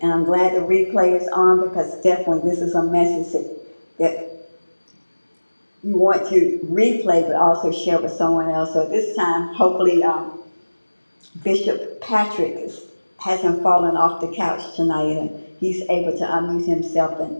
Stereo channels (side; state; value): both; inverted; correlation -1.00